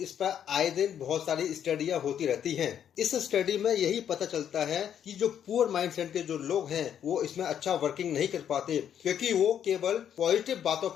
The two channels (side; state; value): right; quieter; 9.3 dB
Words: पर आए दिन बहुत सारी स्टडियां होती रहती हैं। इस स्टडी में यही पता चलता है कि जो पुअर माइंडसेट के जो लोग हैं वो इसमें अच्छा वर्किंग नहीं कर पाते, क्योंकि वो केवल पॉजिटिव बातों